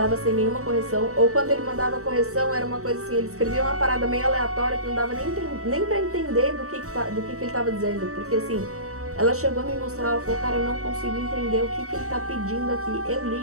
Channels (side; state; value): left; late; 0.64 ms